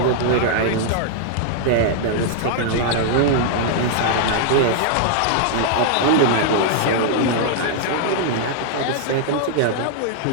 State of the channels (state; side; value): different; both; correlation -0.01